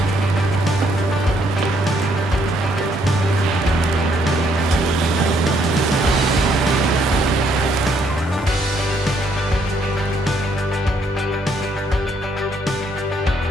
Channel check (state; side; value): normal; both; correlation 0.70